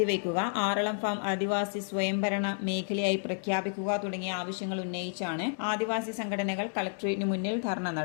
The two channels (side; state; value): right; silent; 57 dB below the other